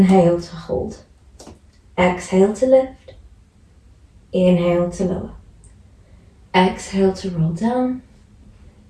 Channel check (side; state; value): both; identical; correlation 1.00